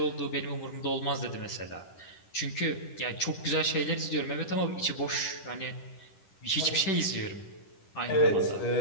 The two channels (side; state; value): right; late; 10 ms